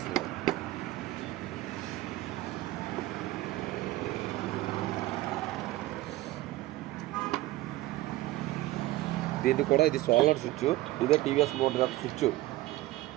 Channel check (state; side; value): quieter; left; 17.4 dB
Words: దీన్ని కూడా ఇది సోలర్ స్విచ్, ఇదే టీవీఎస్ మోటార్ యొక్క స్విచ్.